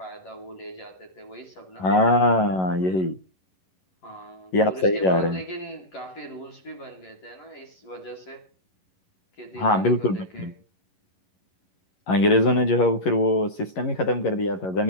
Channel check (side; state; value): right; late; 11 ms